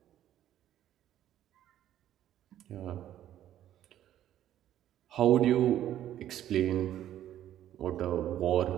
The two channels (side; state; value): left; quieter; 11.9 dB